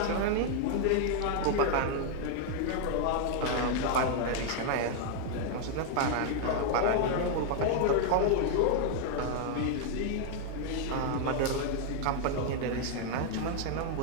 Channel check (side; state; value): both; different; correlation 0.00